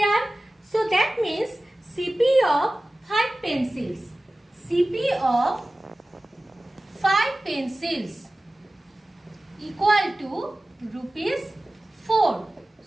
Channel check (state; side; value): normal; both; correlation 0.97